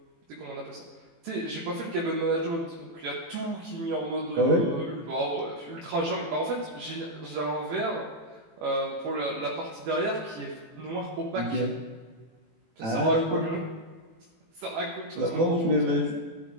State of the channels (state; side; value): late; left; 18 ms